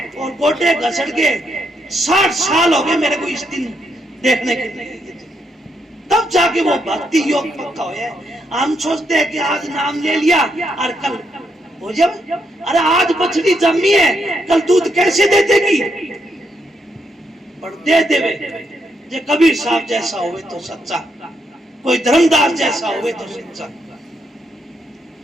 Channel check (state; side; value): normal; both; correlation 0.78